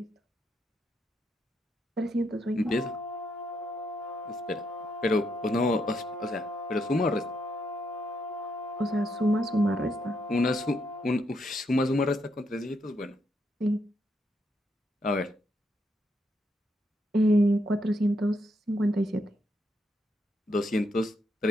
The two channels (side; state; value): both; normal; correlation 0.78